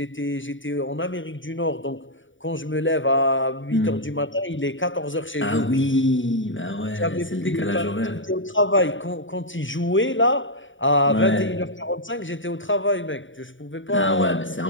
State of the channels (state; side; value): late; right; 0.56 ms